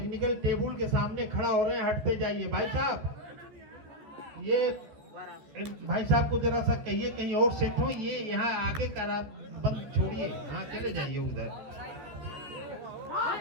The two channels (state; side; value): late; left; 14 ms